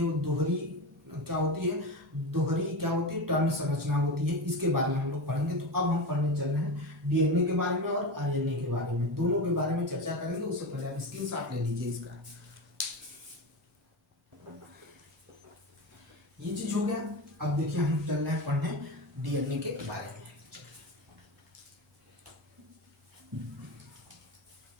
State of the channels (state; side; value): normal; both; correlation 0.21